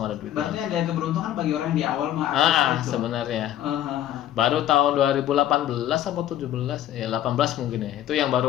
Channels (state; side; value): quieter; right; 12.1 dB